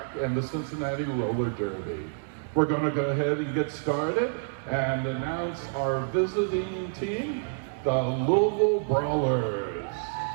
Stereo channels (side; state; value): left; silent; digital silence